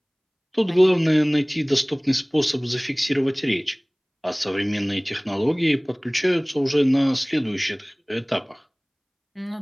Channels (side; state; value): both; identical; correlation 1.00